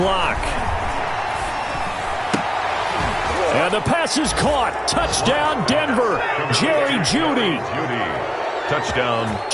And the pass is caught. Touchdown, Denver. Jerry Jeudy. Touchdown,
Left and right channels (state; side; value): identical; both; correlation 1.00